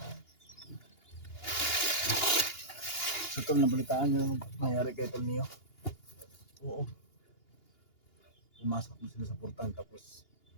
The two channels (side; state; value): right; late; 2.8 ms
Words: So tol, nabalitaan nyo nangyari kay Tol Neo. Oo. Pumasok mo sila sa portal tapos